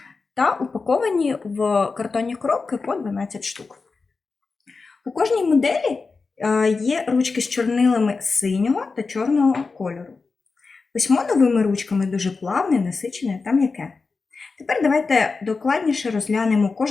та упаковані в картонні коробки по 12 штук. У кожній моделі є ручки з чорнилами синього та чорного кольору. Письмо новими ручками дуже плавне, насичене та м'яке. Тепер давайте докладніше розглянемо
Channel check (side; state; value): right; quieter; 4.3 dB